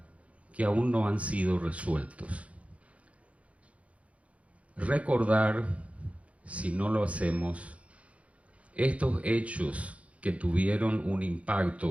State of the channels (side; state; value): left; late; 0.064 ms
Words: que aún no han sido resueltos. Recordar, si no lo hacemos, estos hechos que tuvieron un